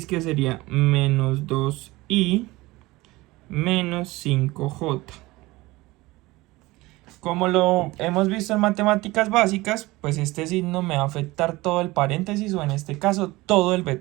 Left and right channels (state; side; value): quieter; left; 20.4 dB